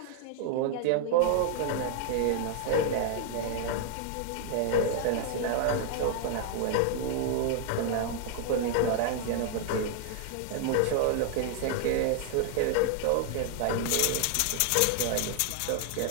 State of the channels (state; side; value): different; both; correlation 0.00